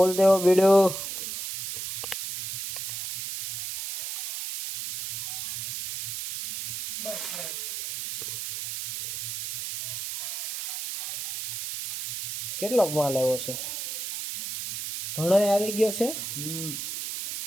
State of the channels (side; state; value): right; noise; hiss, 5 dB below the sound